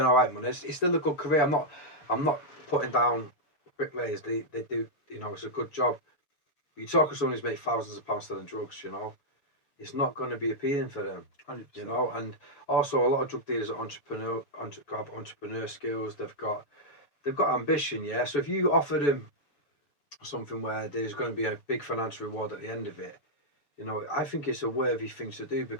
all right money. It's still a good career. I'm not putting down bricklayers. They do, you know, it's a good job. You talk to someone who's made thousands of pounds selling drugs, you know, it's not going to be appealing for them. 100%. You know, and also a lot of drug dealers are entrepreneur skills. They've got ambition, yeah. So if you offer them something where there's going to be a big financial reward at the end of it, you know, I think it's a worthy thing to do,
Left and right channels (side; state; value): right; late; 6.9 ms